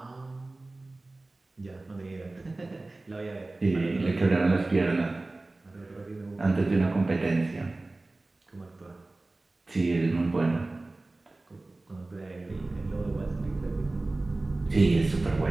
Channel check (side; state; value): left; quieter; 3.1 dB